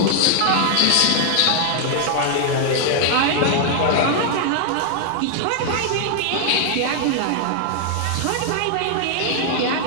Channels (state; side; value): different; both; correlation 0.00